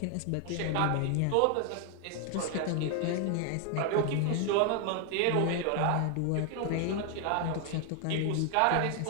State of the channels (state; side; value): different; both; correlation 0.00